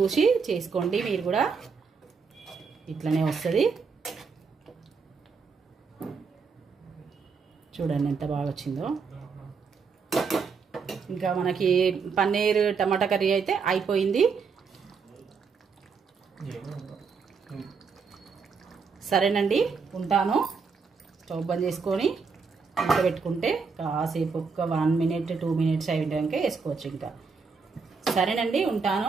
చేసుకోండి, మీరు కూడా ఇట్లనే వస్తుంది. చూడండి ఎంత బాగా వచ్చిందో. ఇంకా మనకి పన్నీర్ టమాటా కర్రీ అయితే అయిపోయింది. సరేనండి, ఉంటాను. స్టవ్ బంద్ చేసుకొని ఇంట్లో పెట్టుకుంటే కాసేపు ఒక 1 minute 2 minutes అయ్యాక వేసుకోవచ్చు ఇంకా. సరేనండి, ఉంటాను.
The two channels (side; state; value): left; quieter; 5.3 dB